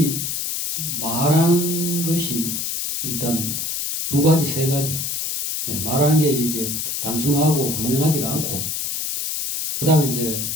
말하는 것이 일단 두 가지, 세 가지. 말하는 게 이게 단순하고 분명하지 않고 그 다음에 이제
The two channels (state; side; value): noise; left; hiss, 2 dB below the sound